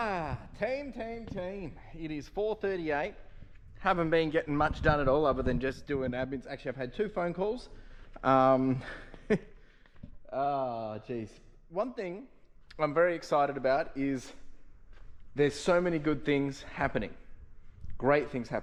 Team. It is 4:38. Haven't been getting much done at all other than just doing admins. Actually, I've had 2 phone calls. Geez. One thing I'm very excited about is there's so many good things happening. Great things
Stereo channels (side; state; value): both; identical; correlation 1.00